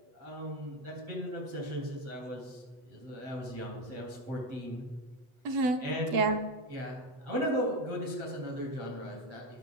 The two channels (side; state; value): left; late; 8.0 ms